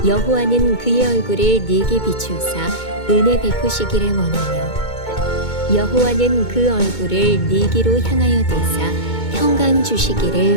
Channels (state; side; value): late; right; 2.2 ms